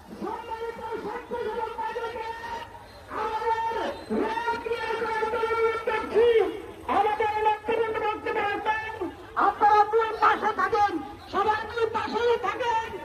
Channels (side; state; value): both; identical; correlation 1.00